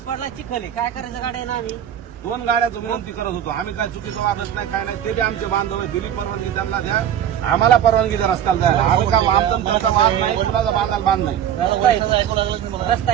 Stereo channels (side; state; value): left; quieter; 9.9 dB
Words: चिखल काय करायचं गाड्या ना आम्ही 2 गाड्याचं विनंती करत होतो. आम्ही काय चुकीचं वागत नाही काय नाही. ते बी आमचे बांधव आहे. दिली परवानगी त्यांना द्या. आम्हाला परवानगी द्या रस्त्याला जायला. आम्ही का आमचा त्यांचा बांध नाही कुणाचा बांधायला बांध नाही. रस्ता